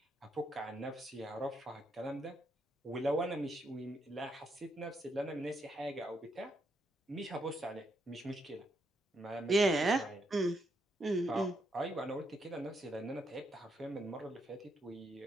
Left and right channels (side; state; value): both; normal; correlation 0.78